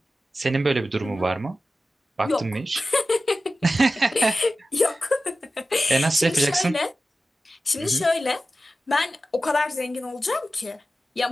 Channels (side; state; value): both; normal; correlation 0.94